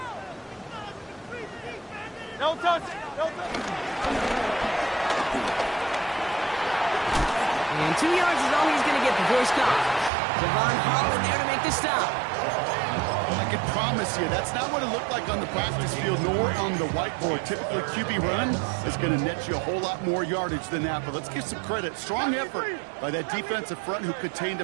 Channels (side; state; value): left; drops out; at 10.1 s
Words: No touch. No touch. And 2 yards is all he's going to get before he stops. Javon Holland there to make the stop. I can promise you, that's not what it looked like on the practice field nor on the whiteboard. Typically, QB run is going to net you a whole lot more yardage than that. But let's give some credit. Strong effort by that defensive front who contained a